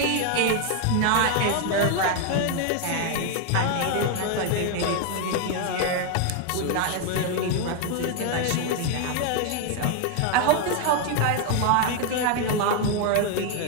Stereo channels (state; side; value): different; both; correlation 0.01